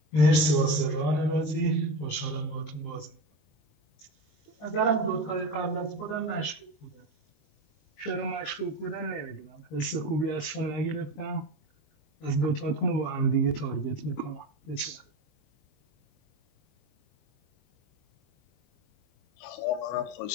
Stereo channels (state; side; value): late; right; 19 ms